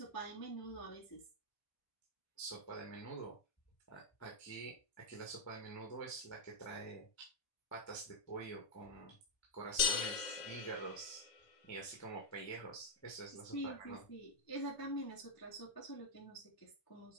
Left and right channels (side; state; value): right; late; 1.8 ms